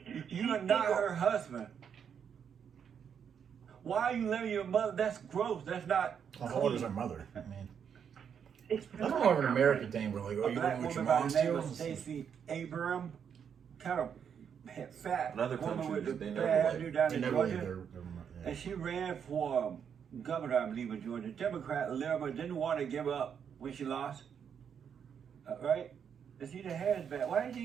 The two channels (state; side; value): quieter; left; 7.6 dB